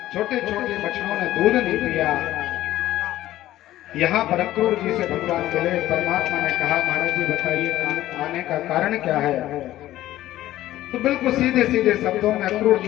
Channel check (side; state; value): right; quieter; 14.5 dB